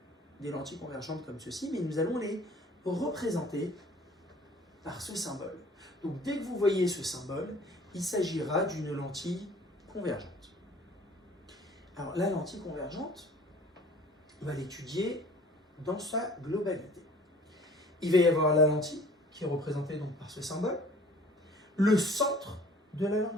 des lentilles convergentes comme ceci, mais nous allons les représenter par ce symbole. Donc dès que vous voyez ce symbole, il s'agira d'une lentille convergente. Alors la lentille convergente, on va l'étudier dans sa globalité. Il va y avoir la lentille, qui est représentée donc par ce symbole, le centre de la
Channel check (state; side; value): normal; both; correlation 0.50